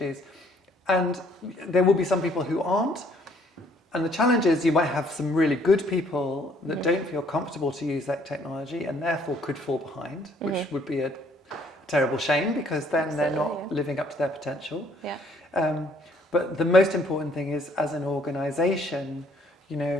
and there will be some people who aren't. And the challenge is you might have some really good people that don't feel comfortable to use that technology and therefore could fall behind, which would be a terrible shame because then they're not living up to their potential. But the most important thing is, as an organization,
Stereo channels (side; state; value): both; normal; correlation 0.63